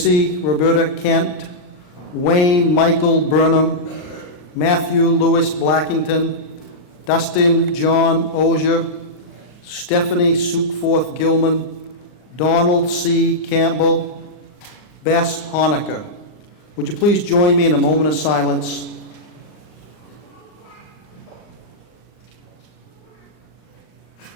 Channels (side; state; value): right; late; 40 ms